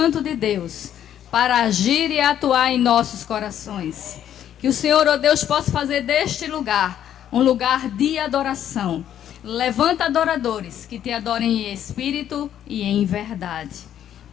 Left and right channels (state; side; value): quieter; right; 10.4 dB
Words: de Deus para agir e atuar em nossos corações. Que o Senhor, ó Deus, possa fazer deste lugar um lugar de adoração. Levanta adoradores que te adorem em espírito e em verdade.